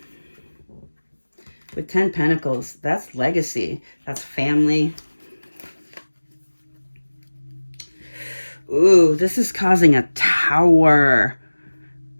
With 10 Pentacles, that's legacy. That's family. Ooh, this is causing a Tower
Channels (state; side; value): inverted; both; correlation -1.00